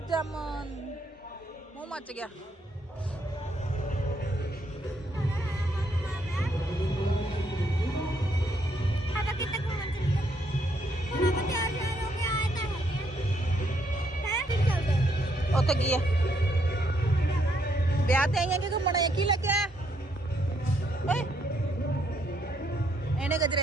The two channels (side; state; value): both; normal; correlation 0.73